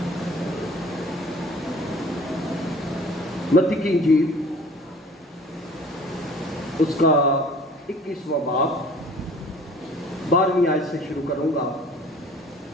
متی کی انجیل اس کا 21واں باب 12ویں آیت سے شروع کروں گا۔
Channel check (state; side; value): normal; both; correlation 0.49